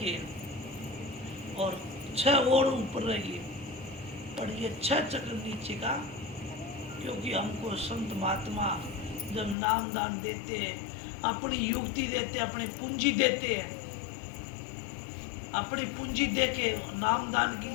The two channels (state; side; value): drops out; right; at 9.6 s